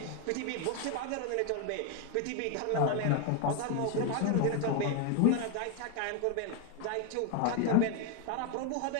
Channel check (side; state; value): both; different; correlation 0.01